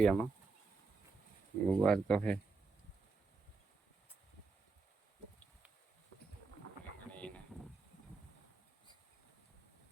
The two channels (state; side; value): quieter; left; 4.2 dB